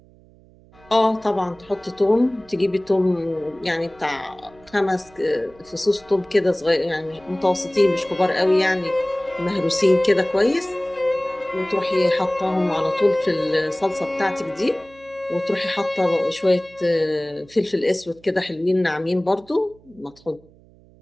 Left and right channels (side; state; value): right; noise; hum, 27 dB below the sound